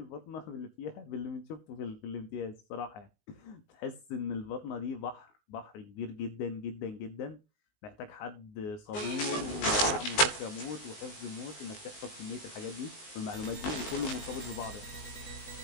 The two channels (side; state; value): right; late; 19 ms